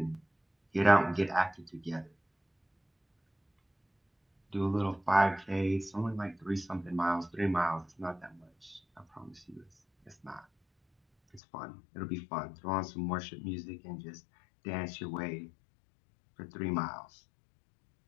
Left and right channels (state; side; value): drops out; right; at 11.4 s